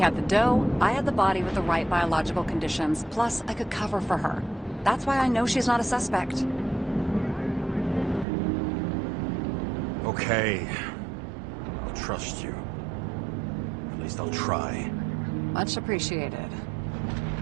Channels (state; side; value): drops out; left; at 8.2 s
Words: the dough, I had the body with the right biological conditions, plus I could cover for her. That's why I know she's not a suspect. Okay. I'll trust you. At least I'll try. Much appreciated.